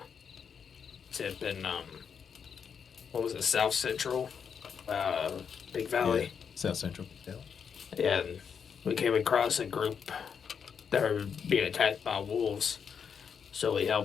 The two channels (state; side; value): quieter; right; 6.9 dB